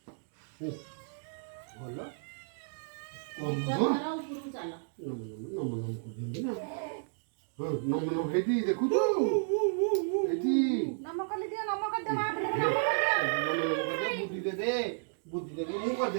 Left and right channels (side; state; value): left; silent; digital silence